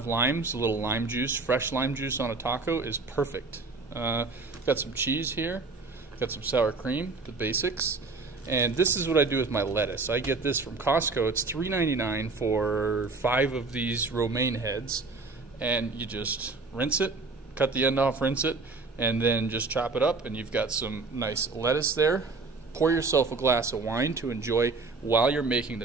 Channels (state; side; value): quieter; left; 3.9 dB